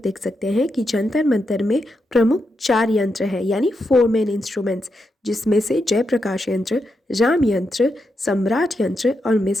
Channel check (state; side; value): normal; both; correlation 0.84